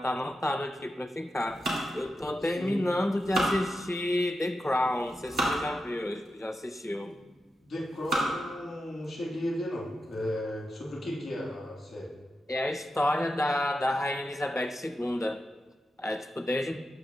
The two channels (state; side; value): normal; both; correlation 0.89